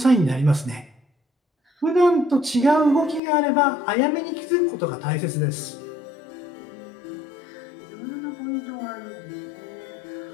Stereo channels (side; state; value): right; drops out; at 3.2 s